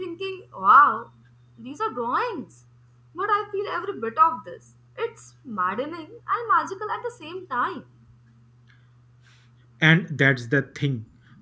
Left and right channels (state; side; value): identical; both; correlation 1.00